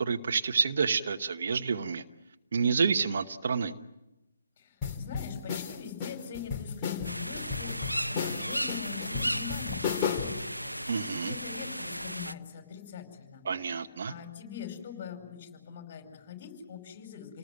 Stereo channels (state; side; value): inverted; both; correlation -0.74